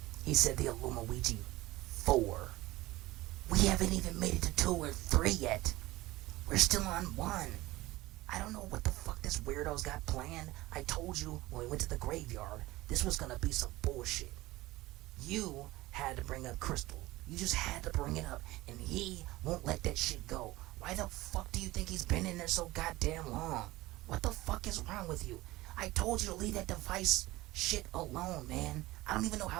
he said the Illumiwiji 4. We haven't even made it to 2 or 3 yet. We're still on 1. I don't know what the fuck this weirdo's got planned. I told you when we went to the graveyard, this was gonna be some bullshit. You had to bring up Crystal. You just had to bring it up, and he won't let that shit go. Why the fuck do you think he's been in there so goddamn long? What the fuck is wrong with you? I told you to leave that device shit alone, man. I don't even know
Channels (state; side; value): quieter; left; 18.7 dB